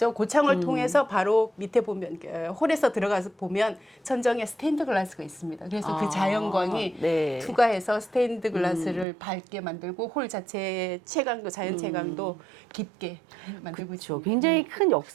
고창을 통해서 바로 밑에 보면 홀에서 들어가서 보면 천정에 스테인드 글라스가 있습니다. 그래서 그 자연광이 네. 투과해서 스테인드 글라스를 밝게 만들고 홀 자체의 채광도 자연 채광도 깊게 만들고 그렇죠. 있습니다. 굉장히 큰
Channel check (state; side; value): drops out; left; at 9.1 s